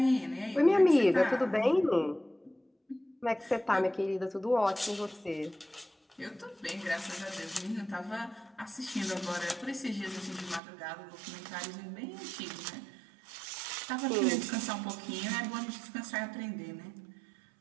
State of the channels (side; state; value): left; drops out; at 10.6 s